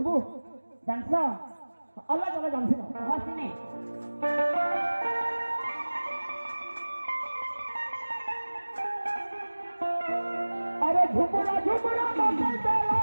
डांसो अल्लाह जगह जानसी ना हसीने अरे झुमरा झुमरा मोते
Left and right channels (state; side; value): inverted; both; correlation -1.00